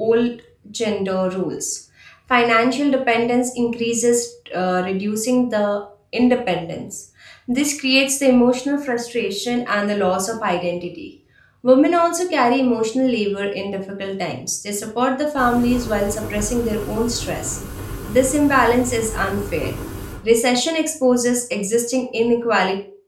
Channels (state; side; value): identical; both; correlation 1.00